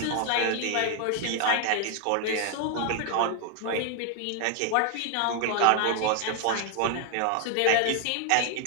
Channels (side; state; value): both; different; correlation 0.01